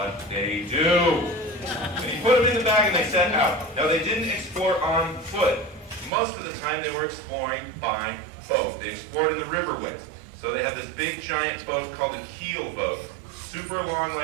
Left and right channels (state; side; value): drops out; left; at 6.1 s